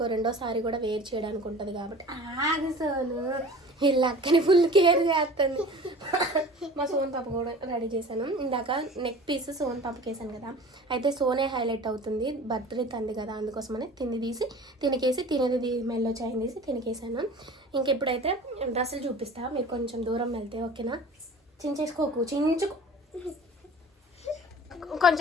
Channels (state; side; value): normal; both; correlation 0.42